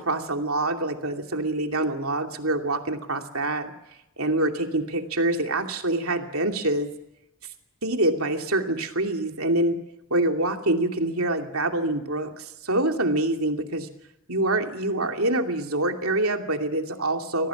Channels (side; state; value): both; normal; correlation -0.17